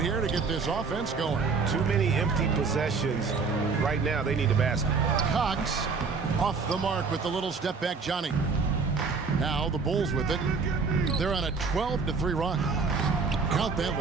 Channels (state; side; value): quieter; left; 4.8 dB